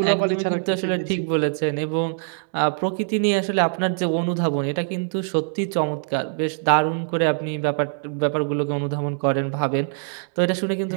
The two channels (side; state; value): left; silent; digital silence